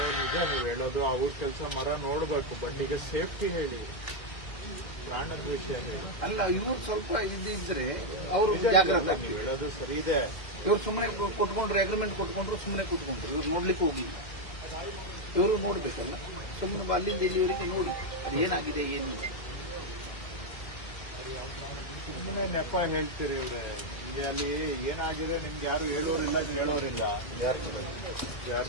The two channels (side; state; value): right; late; 2.0 ms